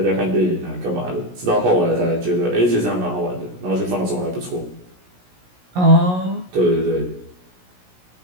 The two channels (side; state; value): left; late; 17 ms